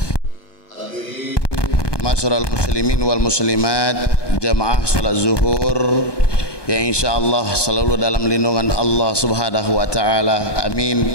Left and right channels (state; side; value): late; right; 1.2 ms